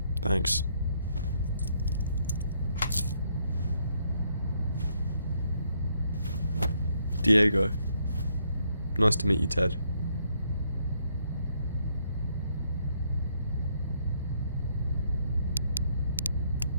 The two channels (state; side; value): inverted; both; correlation -0.72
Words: Thanks. Diego. Nice to meet you, Ted.